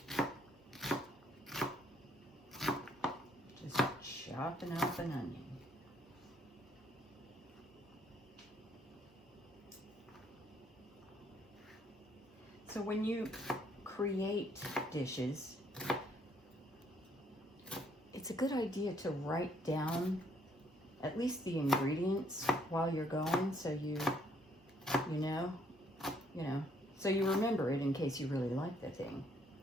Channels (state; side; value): normal; both; correlation 0.67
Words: chopping up an onion. So when you create dishes, it's a good idea to write down at least the ingredients while you're going, so you know, so you remember it in case you really like the thing.